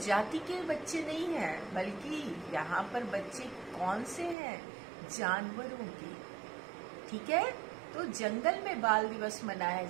के बच्चे नहीं हैं, बल्कि यहाँ पर बच्चे कौन से हैं? जानवरों के। ठीक है, तो जंगल में बाल दिवस मनाया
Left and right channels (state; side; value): drops out; left; at 4.4 s